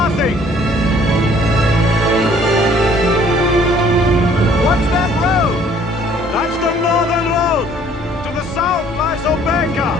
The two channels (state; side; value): normal; both; correlation 0.58